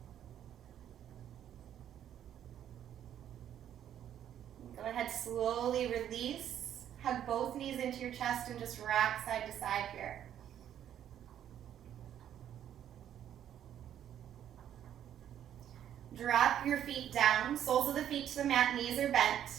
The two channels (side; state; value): left; quieter; 10.4 dB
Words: Go ahead, slowly release. Hug both knees into your chest and just rock side to side here. Drop your feet down, soles of the feet to the mat, knees are bent.